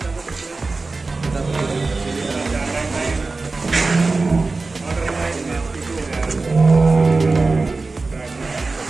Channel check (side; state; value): left; quieter; 3.7 dB